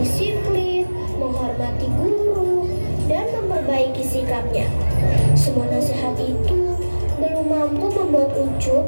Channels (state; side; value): inverted; both; correlation -1.00